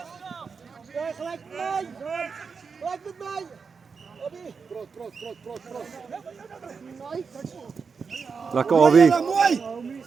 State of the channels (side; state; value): left; quieter; 5.4 dB